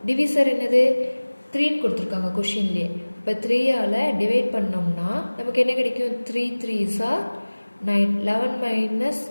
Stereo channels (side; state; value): both; inverted; correlation -1.00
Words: டிவிசர் என்னது? 3ன்னு கொடுத்துருக்காங்க கொஷின்லேயே. இப்போ 3ஆல் டிவைட் பண்ணோம்னா நமக்கு என்ன கிடைக்கும்? 3 3s are 9. 11 minus